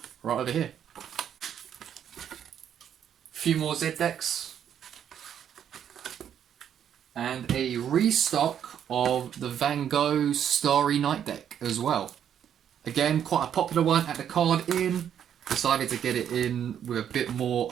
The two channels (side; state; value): left; quieter; 9.2 dB